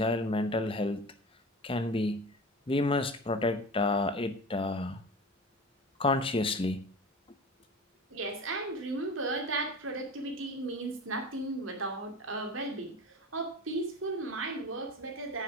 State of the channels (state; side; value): normal; both; correlation 0.33